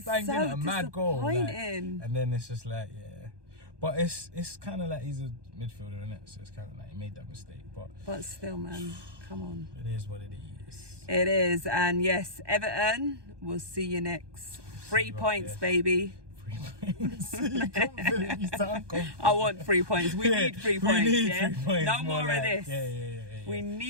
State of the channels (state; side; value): late; left; 1.2 ms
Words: banged in a mad goal. Like, and then it's just like, yeah. But it's kind of like he's a midfielder, isn't it? So it's kind of like he made that mistake. But still, man, come on. It is what it is. It is. And yes, Everton, we'll see you next. 3 points, baby. 3 points. You confident, you sound confident. I want 3 points. We need 3 points. We need 3 points. No more like, of this. Yeah. We